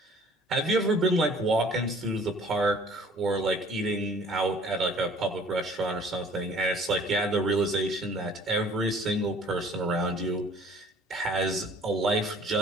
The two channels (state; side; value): normal; both; correlation 0.53